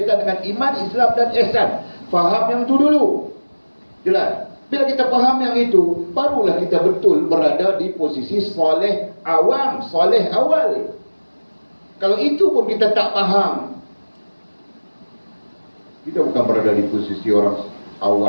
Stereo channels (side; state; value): both; inverted; correlation -1.00